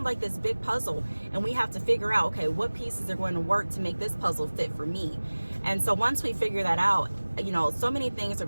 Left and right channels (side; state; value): both; inverted; correlation -1.00